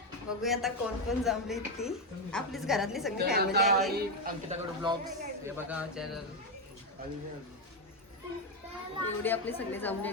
बघूया आता कोण कोण जमली ती. आपलीच घरातली सगळी फॅमिली आहे. अंकिताकडे ब्लॉग्स हे बघा चॅनल. एवढी आपली सगळी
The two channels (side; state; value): both; normal; correlation 0.07